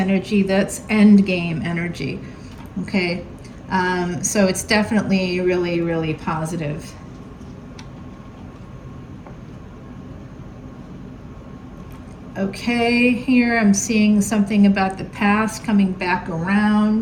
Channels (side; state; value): both; identical; correlation 1.00